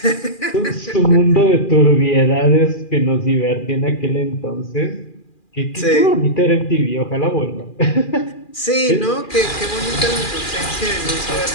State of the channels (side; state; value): right; late; 2.4 ms